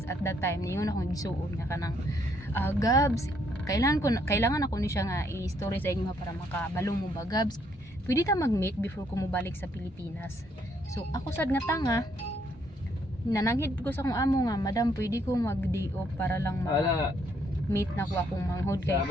at that time ningon akong gisuon nga kanang Gabs, kailangan ako ni siya nga i-story sa inyo para makabalong mo ba Gabs. Pwede ta mag-meet before ko mo balik sa Pilipinas. So ako sad nga tanga, nananghid ko sa akong amo nga, madam pwede ko mag-day off para lang meet na ko akong manghod kay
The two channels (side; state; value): both; normal; correlation 0.71